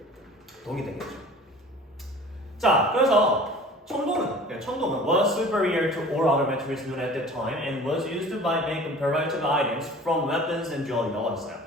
동이 되겠죠. 자, 그래서 청동은 was superior to all other materials known at that time and was used by make comparative items from weapons and jewelry라고 했어요.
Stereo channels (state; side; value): normal; both; correlation 0.44